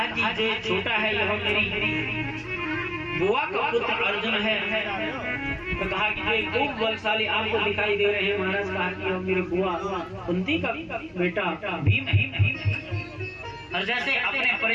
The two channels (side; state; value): both; identical; correlation 1.00